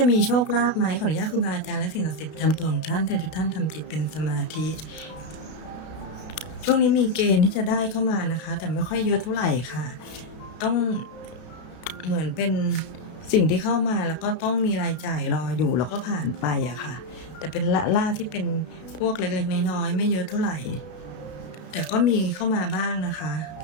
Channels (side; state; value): right; late; 33 ms